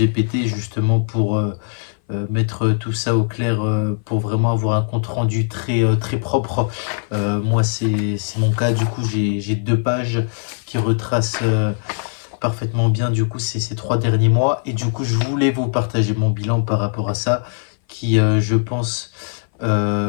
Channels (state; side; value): silent; right; 58 dB below the other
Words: justement pour mettre tout ça au clair, pour vraiment avoir un compte rendu très propre. Moi c'est mon cas, du coup j'ai 2 pages qui retracent parfaitement bien du coup ces 3 derniers mois, et du coup je voulais vous partager mon bilan par rapport à ça qui je pense